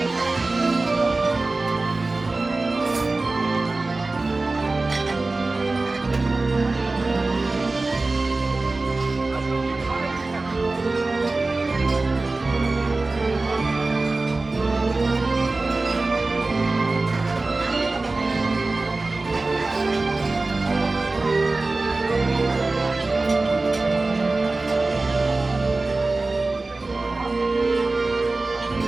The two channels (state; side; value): quieter; left; 3.3 dB